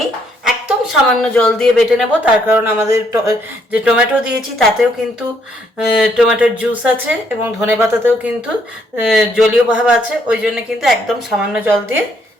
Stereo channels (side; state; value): both; normal; correlation 0.71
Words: একদম সামান্য জল দিয়ে বেটে নেব, তার কারণ আমাদের যে টমেটো দিয়েছি তাতেও কিন্তু টমেটোর জুস আছে এবং ধনেপাতাতেও কিন্তু জলীয় ভাব আছে, ওই জন্য কিন্তু একদম সামান্য জল দিয়ে